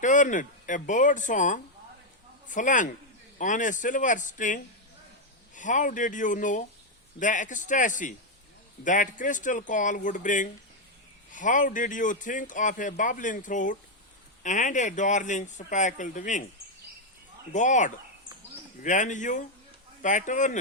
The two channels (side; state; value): both; normal; correlation 0.01